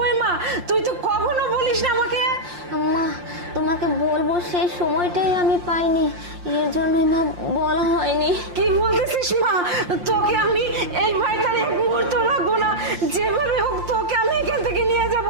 মা, তুই তো কখনো বলিস না আমাকে। মা তোমাকে বলবো সেই সময়টাই আমি পাইনি, এর জন্যই মা বলা হয়নি। কি বলতেছিস মা? তোকে আমি এই বাড়িতে এক মুহূর্ত রাখবো না, যেভাবে হোক তোকে আমি এখান থেকে নিয়ে যাব।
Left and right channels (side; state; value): left; late; 5.7 ms